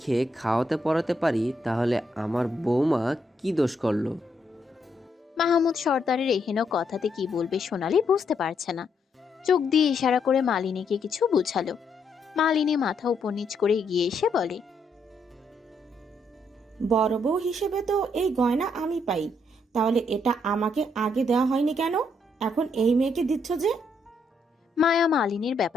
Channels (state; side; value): normal; both; correlation 0.75